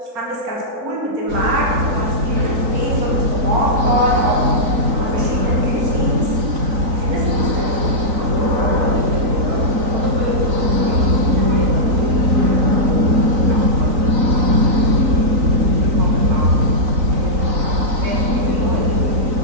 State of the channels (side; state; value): left; late; 3.9 ms